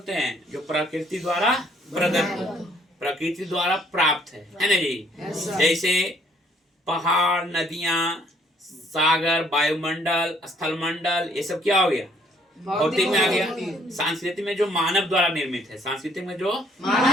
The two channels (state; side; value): normal; both; correlation 0.64